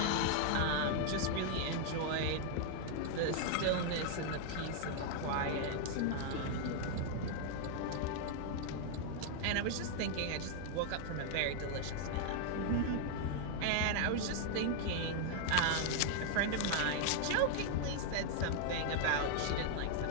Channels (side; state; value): both; different; correlation 0.00